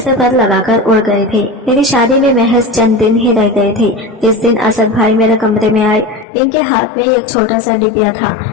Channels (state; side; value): drops out; right; at 6.2 s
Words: पर लगाकर उड़ गए थे। मेरी शादी में महज चंद दिन ही रह गए थे। इस दिन असद भाई मेरे कमरे में आए। इनके हाथ में एक छोटा सा डिब्बा था।